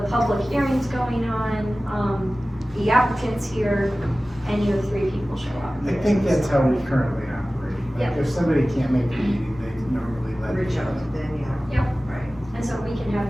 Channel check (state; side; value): normal; both; correlation 0.97